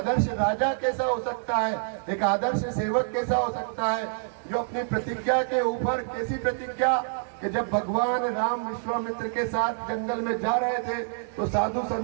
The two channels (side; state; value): left; silent; 60 dB below the other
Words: राजा कैसा हो सकता है, एक आदर्श सेवक कैसा हो सकता है, जो अपनी प्रतिज्ञा के ऊपर, कैसी प्रतिज्ञा कि जब भगवान राम विश्वामित्र के साथ जंगल में जा रहे थे तो साधु